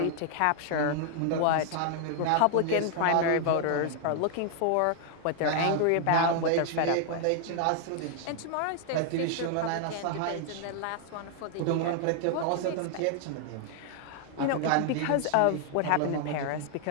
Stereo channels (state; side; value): different; both; correlation 0.00